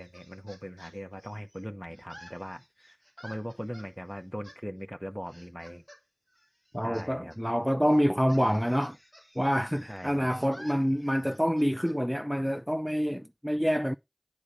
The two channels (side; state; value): both; identical; correlation 1.00